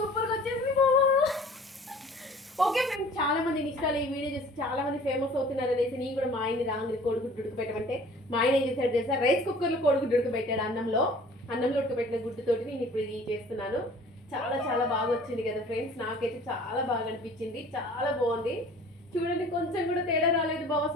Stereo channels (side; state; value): both; normal; correlation 0.49